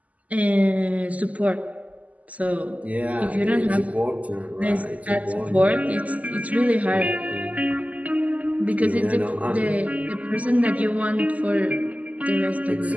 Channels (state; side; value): late; left; 0.073 ms